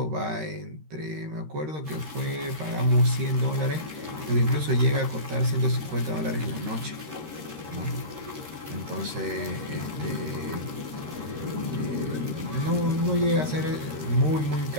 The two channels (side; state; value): left; late; 13 ms